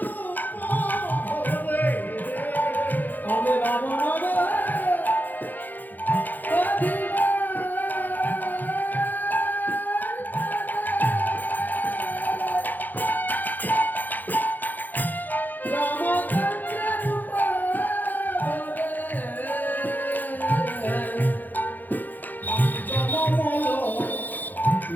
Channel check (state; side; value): late; right; 0.085 ms